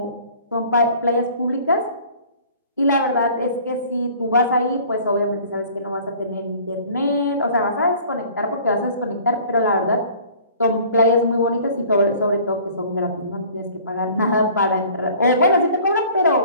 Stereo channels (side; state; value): both; inverted; correlation -0.50